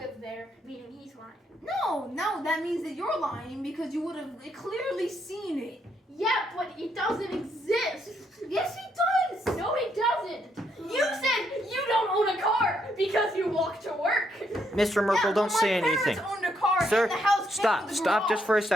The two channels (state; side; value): normal; both; correlation 0.75